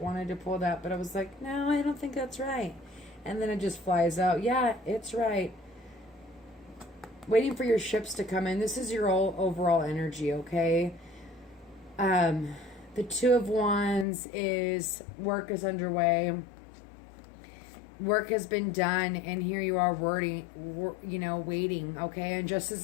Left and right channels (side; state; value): right; drops out; at 14.1 s